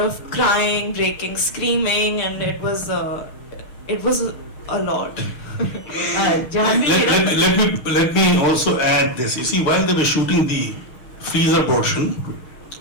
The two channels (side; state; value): right; late; 6.7 ms